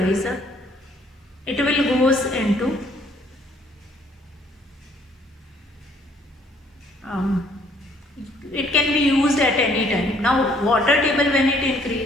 up, it will goes into it can be used at any time. Now water table, when it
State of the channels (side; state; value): both; normal; correlation 0.63